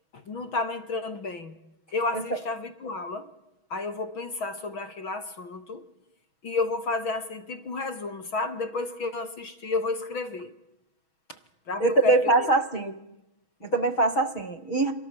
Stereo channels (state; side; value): late; right; 6.2 ms